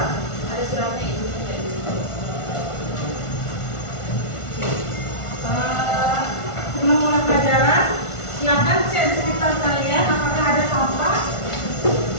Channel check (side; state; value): right; late; 1.4 ms